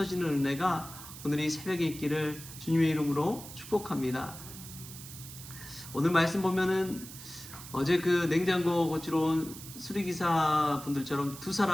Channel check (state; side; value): noise; right; hiss, 14 dB below the sound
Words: 은혜가 오늘 이 새벽에 있기를 주님의 이름으로 축복합니다. 오늘 말씀 보면은 어제 그 냉장고 고치러 온 수리기사 분들처럼 두